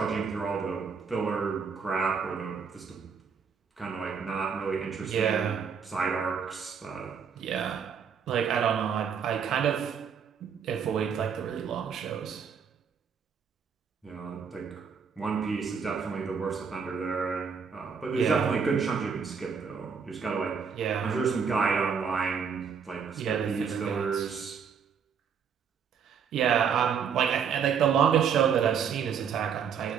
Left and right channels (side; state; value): left; quieter; 6.7 dB